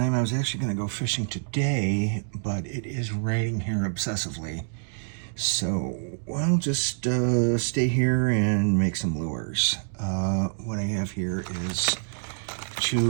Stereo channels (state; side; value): silent; left; digital silence